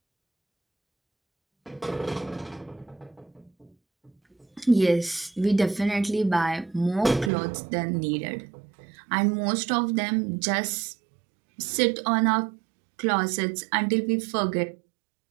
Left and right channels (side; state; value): left; drops out; at 7.3 s